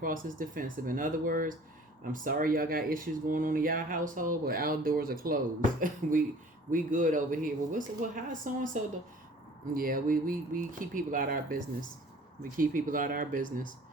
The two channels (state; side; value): normal; both; correlation 0.49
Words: as defensive. In other words, I'm sorry y'all got issues going on in y'all household, but our doors are closed. we good over here. Well, how so and so? Yeah, we keep people out of our business. We keep people out of our business.